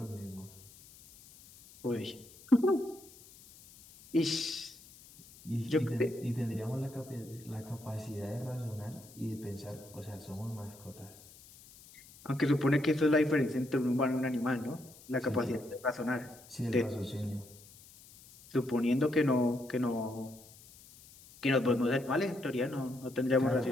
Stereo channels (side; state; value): left; noise; hiss, 22 dB below the sound